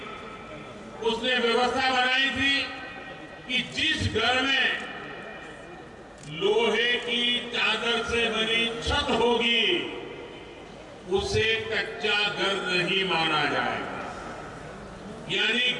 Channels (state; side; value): identical; both; correlation 1.00